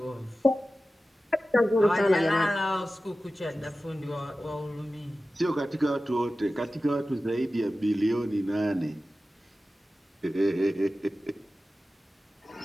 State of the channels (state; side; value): normal; both; correlation 0.95